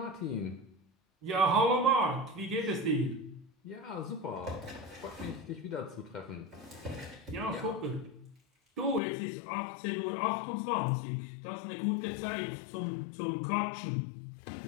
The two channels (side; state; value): right; drops out; at 9.0 s